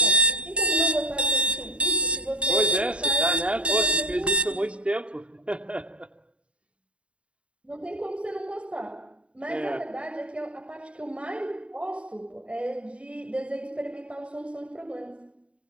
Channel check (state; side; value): late; left; 0.060 ms